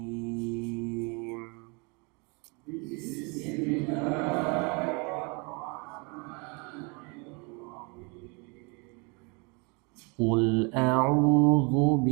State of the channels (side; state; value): left; quieter; 31.6 dB